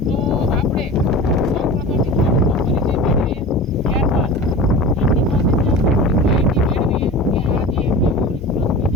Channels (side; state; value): both; normal; correlation 0.34